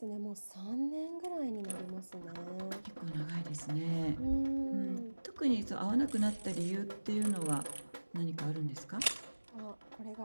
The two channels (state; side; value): inverted; both; correlation -1.00